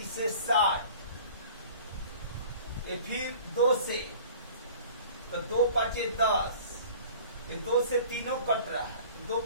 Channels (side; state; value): both; inverted; correlation -0.45